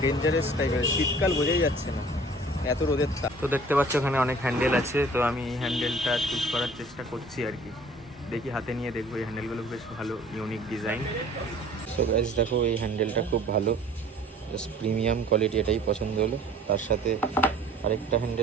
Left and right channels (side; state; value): both; normal; correlation 0.50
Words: ডেঞ্জারাস টাইপের, শীতকাল বোঝাই যাচ্ছে না, এত রোদের তাপ। তো দেখতে পাচ্ছ ওখানে অনেক হ্যান্ডেল আছে, তো আমি এই হ্যান্ডেলটা চুজ করার চেষ্টা করছি আর কি। দেখি হাতে নিয়ে দেখবো, এই হ্যান্ডেলগুলো বেশ ভালো, ইউনিক ডিজাইন। সো গাইস দেখো, এই হ্যান্ডেলটা খুব ভালো, জাস্ট প্রিমিয়াম কোয়ালিটি, এটাই পছন্দ হলো। তার সাথে আরেকটা